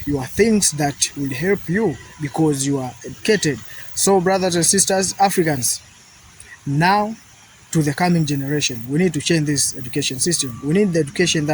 your things that will help you because you are educated. So, brothers and sisters, Africans, now to the coming generation, we need to change this education system. We need the education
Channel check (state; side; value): identical; both; correlation 1.00